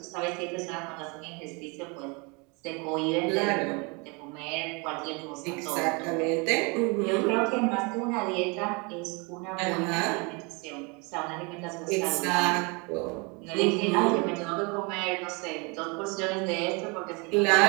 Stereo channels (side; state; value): left; quieter; 30.1 dB